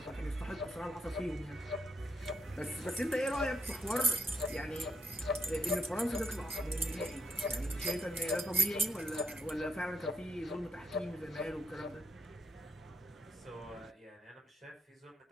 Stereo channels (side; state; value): both; normal; correlation 0.81